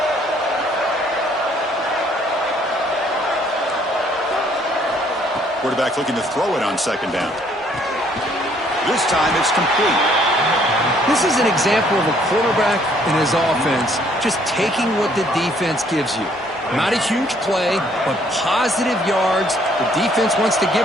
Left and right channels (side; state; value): both; normal; correlation 0.64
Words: Quarterback looking to throw it on second down. This time it's complete. This is an example of a quarterback and his offense just taking what the defense gives you. Not a huge play, but positive yards. The defense wants to